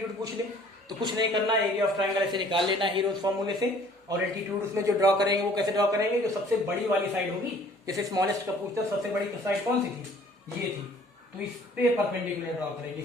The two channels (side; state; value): both; normal; correlation 0.54